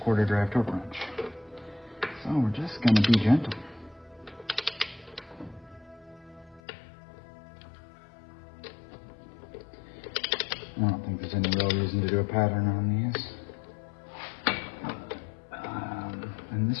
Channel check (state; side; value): drops out; right; at 6.6 s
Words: quarter drive torque wrench. So we're just going to be gentle. I don't think there's any real reason to do a pattern on these. And